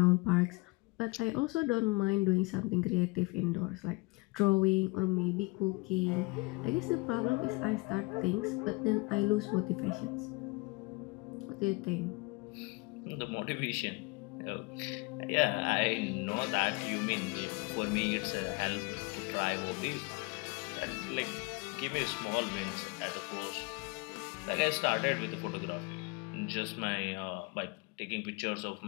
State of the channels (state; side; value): quieter; right; 25.9 dB